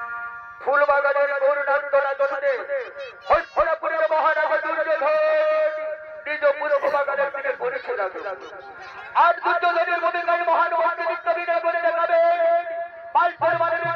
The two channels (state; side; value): identical; both; correlation 1.00